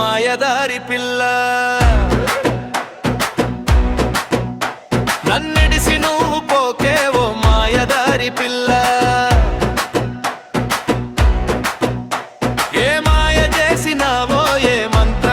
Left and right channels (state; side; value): identical; both; correlation 1.00